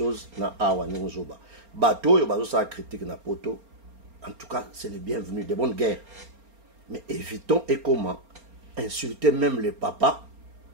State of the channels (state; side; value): late; left; 4.3 ms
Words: dans Awa Nengozoba. Bateau, il y a ça critique na poto. En tout cas, c'est le bienvenu, des bonnes guerres. Mais évitons et comment insulter même le papa